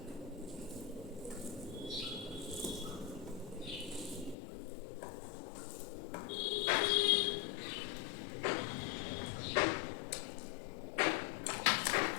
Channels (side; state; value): right; drops out; at 4.4 s